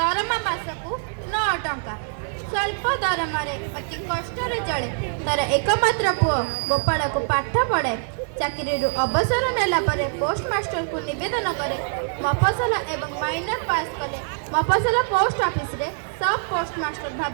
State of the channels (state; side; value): silent; left; digital silence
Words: मासकू 9 टंका स्वल्प दरमारे अति कष्ट चले तार एकमात्र पुओ गोपाल को पाठ पढ़े चाकरी अवसर नेला परे पोस्टमास्टर को निवेदन करे मफसल एवं माइनर पास कले मफसल पोस्ट ऑफिस रे सब पोस्टमास्टर